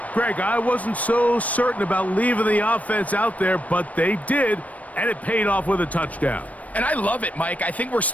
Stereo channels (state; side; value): late; right; 0.069 ms